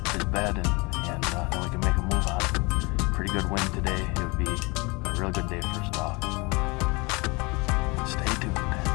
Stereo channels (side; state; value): right; quieter; 27.0 dB